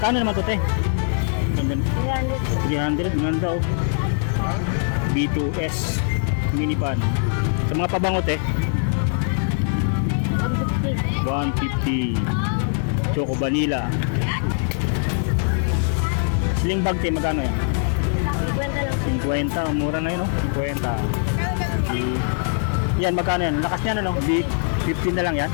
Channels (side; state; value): right; silent; 64 dB below the other